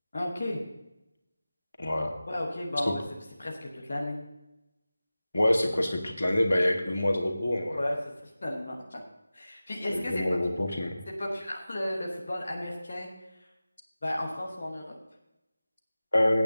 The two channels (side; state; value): both; inverted; correlation -0.96